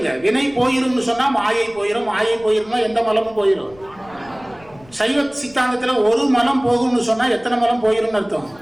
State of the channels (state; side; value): noise; left; rumble, 25 dB below the sound